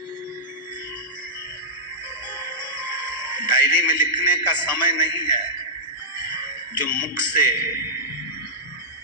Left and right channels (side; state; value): both; normal; correlation -0.12